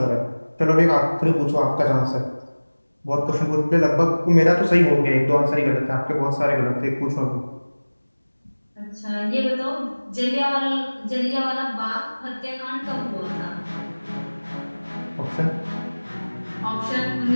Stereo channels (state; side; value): inverted; both; correlation -1.00